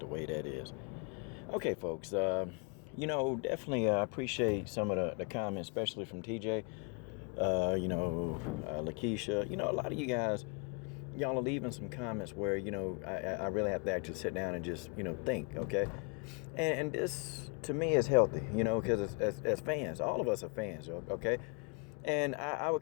way that is. Okay, folks, definitely appreciate some of the comments, especially from TJ, Lakeisha. A lot of you guys, y'all are leaving some comments where, I really have to actually sit down and just, think, okay? And this, to me, is healthy, because as fans, all of us are fans, okay? And I would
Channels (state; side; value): quieter; right; 34.7 dB